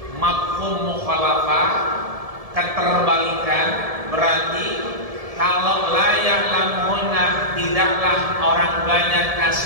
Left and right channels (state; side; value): late; left; 1.7 ms